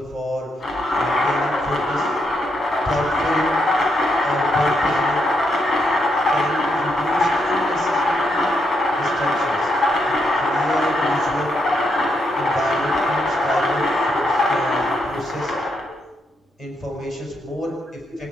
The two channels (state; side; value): normal; both; correlation 0.79